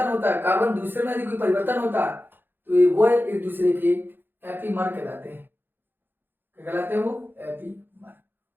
होता है, कार्बन दूसरे में यदि कोई परिवर्तन होता है तो वो एक दूसरे के एपीमर कहलाते हैं। क्या कहलाते हैं वो? एपीमर।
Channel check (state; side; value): late; left; 0.098 ms